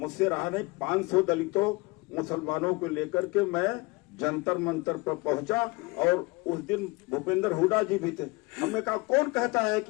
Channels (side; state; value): right; quieter; 25.4 dB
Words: रहा नहीं, 500 दलितों मुसलमानों को लेकर के मैं जंतर मंतर पर पहुंचा। और उस दिन भूपेंद्र हुड्डा जी भी थे। हमने कहा कौन कहता है